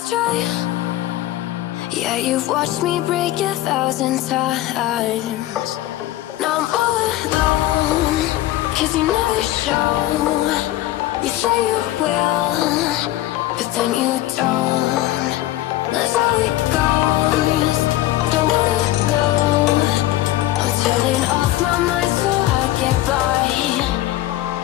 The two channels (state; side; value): quieter; right; 15.3 dB